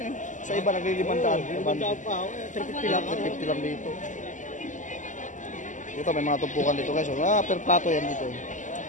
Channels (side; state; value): right; late; 0.37 ms